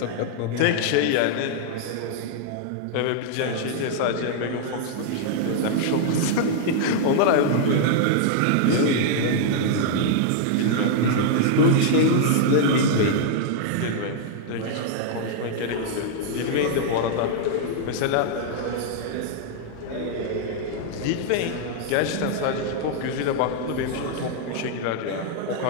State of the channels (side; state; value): both; different; correlation -0.01